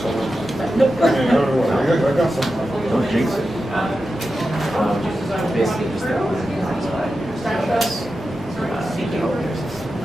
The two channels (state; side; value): normal; both; correlation 0.91